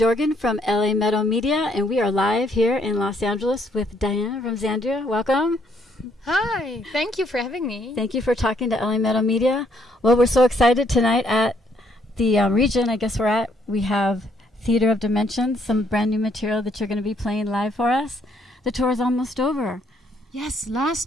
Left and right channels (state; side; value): normal; both; correlation 0.69